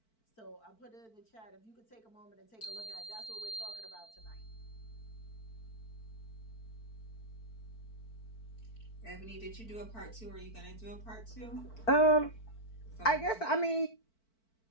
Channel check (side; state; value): right; late; 4.5 ms